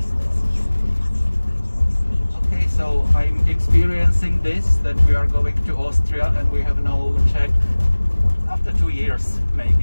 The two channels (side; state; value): both; inverted; correlation -1.00